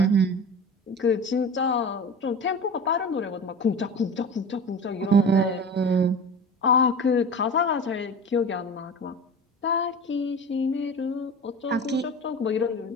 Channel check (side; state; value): both; normal; correlation 0.34